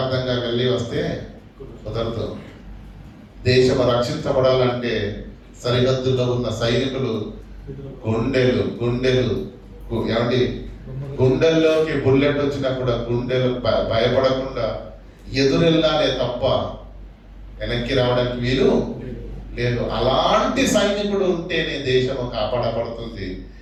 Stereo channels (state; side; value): identical; both; correlation 1.00